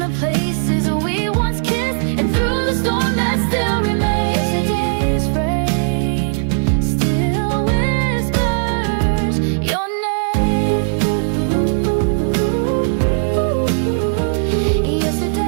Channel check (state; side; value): silent; left; digital silence